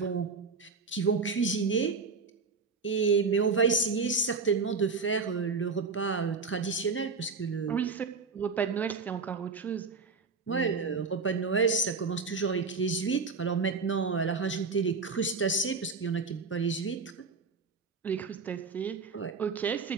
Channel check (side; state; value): left; quieter; 4.6 dB